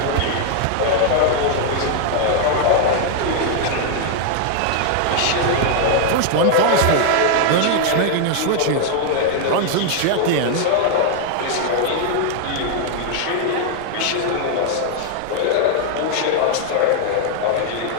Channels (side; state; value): both; different; correlation 0.00